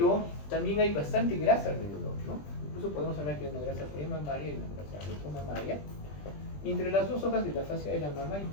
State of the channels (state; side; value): late; right; 20 ms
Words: también hay bastante grasa alrededor, ¿no? Incluso podemos hablar que hay una grasa premamaria y una grasa retromamaria. Y entre las dos hojas de la fascia de la mama hay